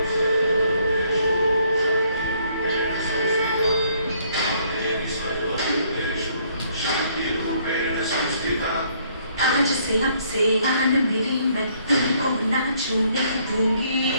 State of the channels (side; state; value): both; inverted; correlation -0.66